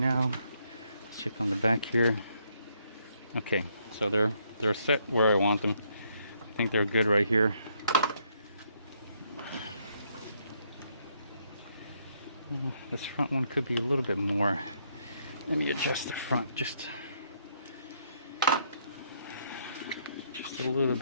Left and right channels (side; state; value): both; inverted; correlation -0.72